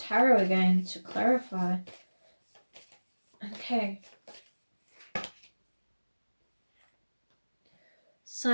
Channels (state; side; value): inverted; both; correlation -1.00